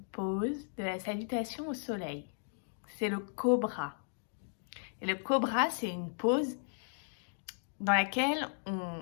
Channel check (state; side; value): silent; right; digital silence